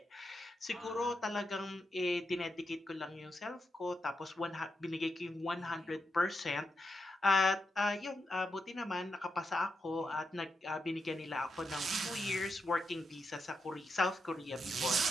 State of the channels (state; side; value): normal; both; correlation 0.85